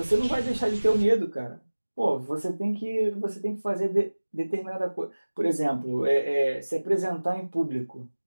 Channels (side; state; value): both; inverted; correlation -1.00